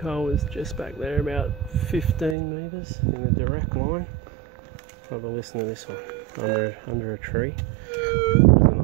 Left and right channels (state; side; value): drops out; left; at 2.4 s